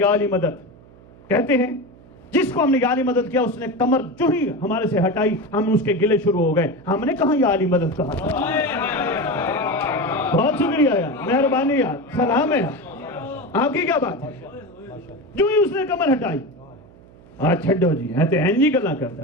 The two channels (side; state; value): right; noise; hum, 24 dB below the sound